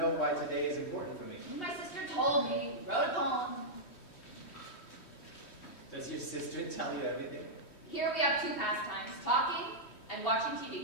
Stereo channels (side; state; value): right; late; 3.1 ms